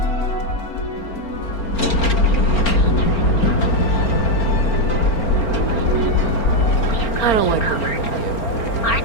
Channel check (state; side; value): late; right; 4.4 ms